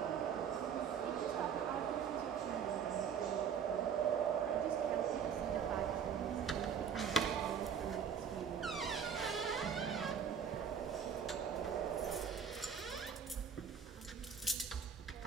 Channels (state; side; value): quieter; left; 7.3 dB